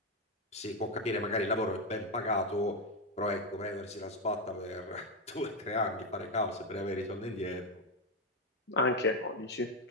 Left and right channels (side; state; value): both; normal; correlation 0.07